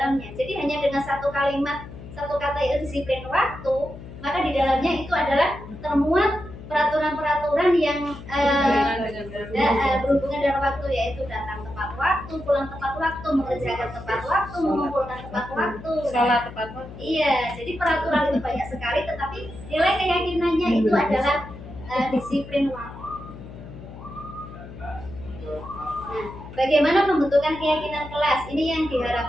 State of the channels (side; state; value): left; noise; hum, 14 dB below the sound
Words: Jadi hanya dengan satu kalimat, satu kata itu disiplin waktu, maka di dalamnya itu adalah termuat peraturan-peraturan yang berhubungan dengan waktu, yaitu datang tepat waktu, pulang tepat waktu, mengerjakan tepat waktu, mengumpulkan tepat waktu. Sholat tepat waktu. Iya, jadi peraturan itu banyak sekali, tetapi nilai keyakinannya itu adalah disiplin waktu. Nah, bagaimana pembentukan keyakinan kelas? Ini yang